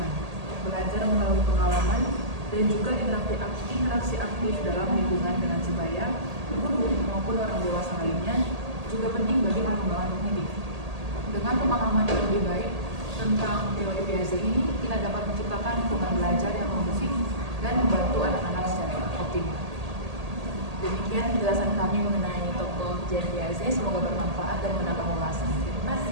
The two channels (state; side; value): late; left; 1.8 ms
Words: belajar melalui pengalaman, dan juga interaksi aktif dalam lingkungan dengan sebaya, guru maupun orang dewasa lainnya juga penting bagi dengan pemahaman yang lebih baik tentang teori Piaget ini, kita dapat menciptakan lingkungan belajar yang kondusif dan membantu anak-anak secara optimal. Demikian penjelasan kami mengenai tokoh Jean Piaget. Semoga bermanfaat dan menambah wawasan. Terima